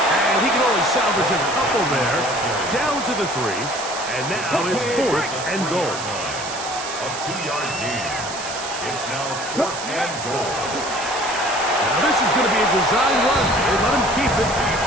And he can only salvage a couple there. Down to the 3. And now it's 4th and goal. A 2-yard gain. It's now 4th and goal. Now this is going to be a design run. They let him keep it.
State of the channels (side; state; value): right; noise; hiss, 9 dB below the sound